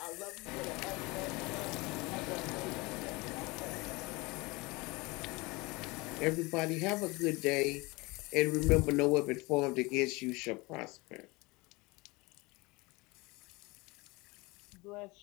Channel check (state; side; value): quieter; right; 24.2 dB